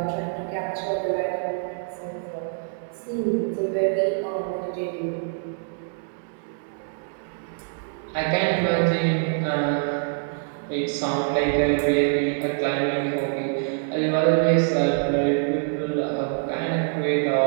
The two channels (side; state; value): left; silent; 62 dB below the other